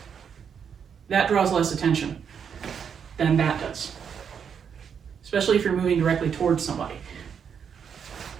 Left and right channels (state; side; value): quieter; left; 7.3 dB